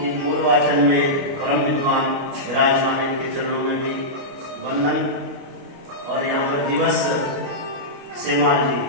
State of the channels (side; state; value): left; late; 29 ms